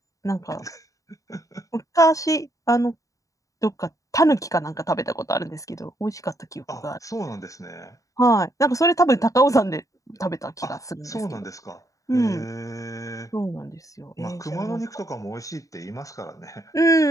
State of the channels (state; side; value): late; right; 0.16 ms